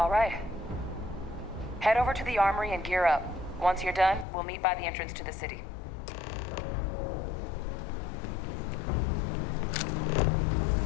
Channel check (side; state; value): right; drops out; at 4.2 s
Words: right. Head over to the armory and gear up. Once you're done, we'll meet by the entrance to the city.